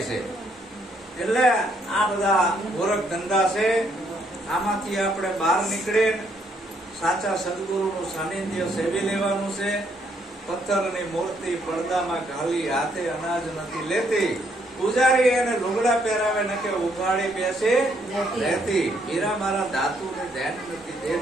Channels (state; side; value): normal; both; correlation 0.71